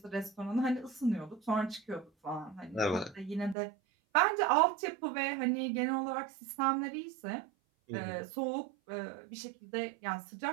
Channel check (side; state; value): left; drops out; at 3.6 s